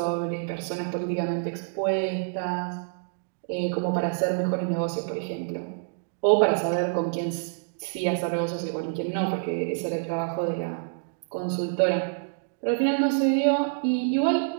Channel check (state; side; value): silent; left; digital silence